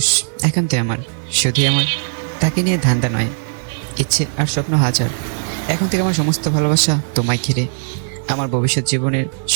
একান্তই আমার, শুধুই আমার, তাকে নিয়ে ধান্দা নয়, ইচ্ছে আর স্বপ্ন হাজার। এখন থেকে আমার সমস্ত ভালোবাসা তোমায় ঘিরে, আমার ভবিষ্যৎ জীবনের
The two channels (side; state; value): left; silent; 67 dB below the other